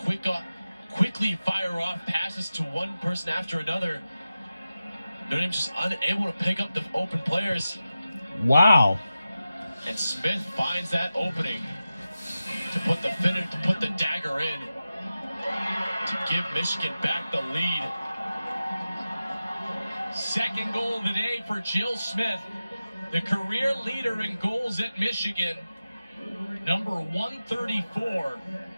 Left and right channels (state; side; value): inverted; both; correlation -0.93